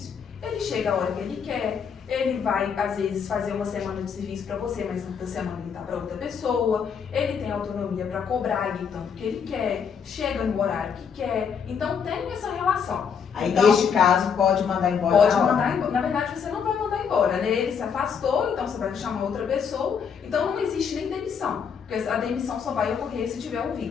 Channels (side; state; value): right; quieter; 6.8 dB